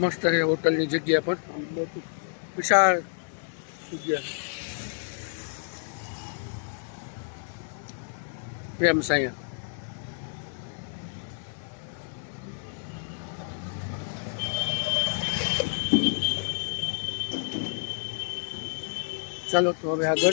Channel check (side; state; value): right; silent; 58 dB below the other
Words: મસ્ત છે હોટલની જગ્યા પણ. બહુ વિશાળ જગ્યા. પ્રેમ સાયા. ચાલો તો હવે